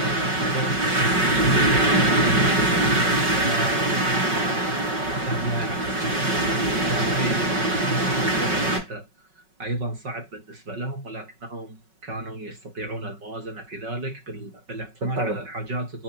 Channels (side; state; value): left; late; 5.4 ms